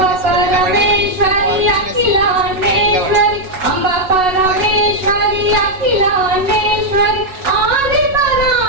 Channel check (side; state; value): left; late; 5.4 ms